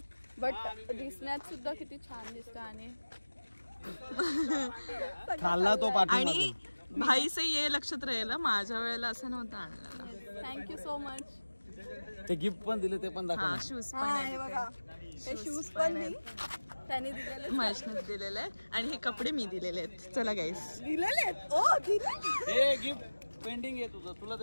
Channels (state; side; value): inverted; both; correlation -1.00